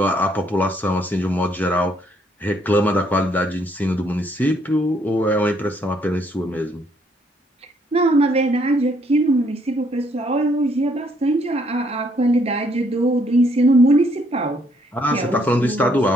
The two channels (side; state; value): both; normal; correlation 0.69